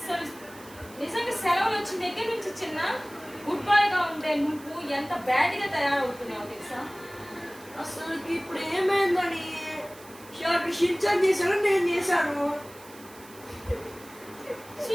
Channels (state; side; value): noise; right; hiss, 21 dB below the sound